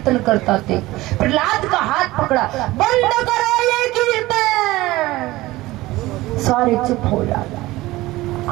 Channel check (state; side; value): quieter; left; 18.5 dB